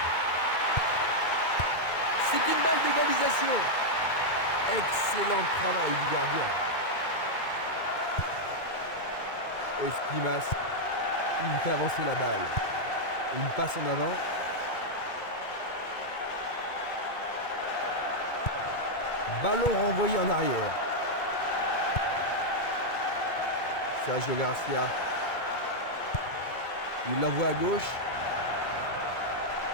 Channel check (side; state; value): right; late; 2.2 ms